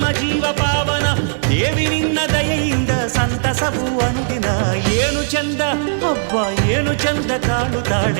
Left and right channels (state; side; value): silent; left; 68 dB below the other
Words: ಜೀವ ಪಾವನ, ದೇವಿ ನಿನ್ನ ದಯೆಯಿಂದ ಸಂತಸವು ಅನುದಿನ. ಏನು ಚಂದ ಹಬ್ಬ, ಏನು ಚಂದ